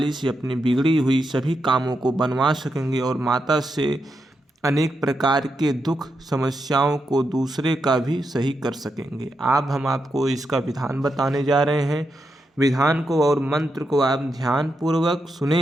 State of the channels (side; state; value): both; normal; correlation 0.85